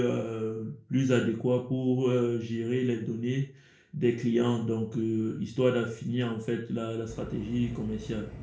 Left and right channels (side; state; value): both; identical; correlation 1.00